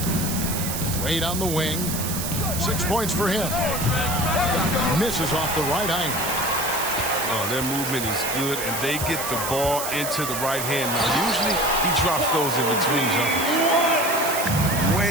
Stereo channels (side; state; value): right; noise; hiss, 4 dB below the sound